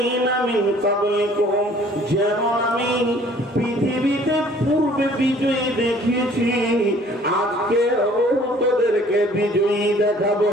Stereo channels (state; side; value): normal; both; correlation 0.55